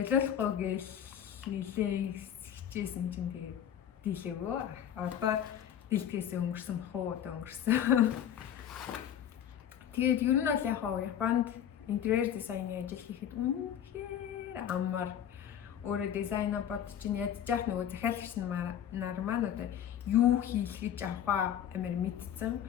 гээл нилээ хичээсэн чинь тэгээд дийлээгөө. Одоо дийлдэхээс өнгөрсөн бах уу одоо өнгөрсөн. Тэгээд ер нь бол яг Японд интерьер дизайны ажил хийхэд үнэхээр амар өөрөө дизайна бодож ядчих нөгөө захиалагч нар маань одоо юу хийх гэж авах амар мэдсэн.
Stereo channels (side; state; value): right; quieter; 9.7 dB